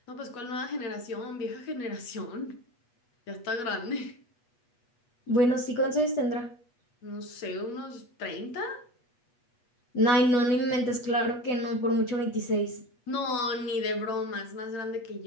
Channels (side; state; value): right; late; 8.2 ms